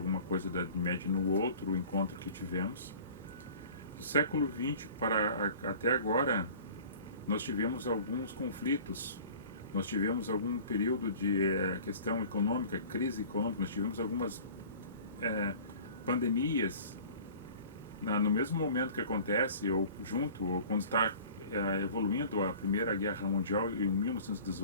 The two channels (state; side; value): inverted; both; correlation -0.45